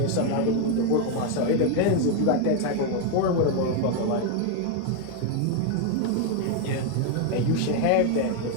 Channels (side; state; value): both; different; correlation 0.01